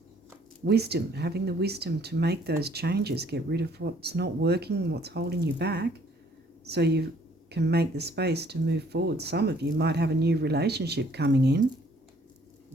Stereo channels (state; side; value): normal; both; correlation 0.62